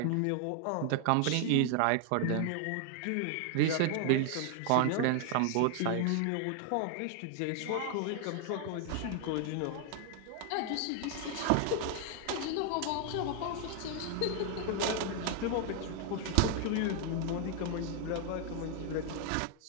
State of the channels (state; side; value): different; both; correlation 0.00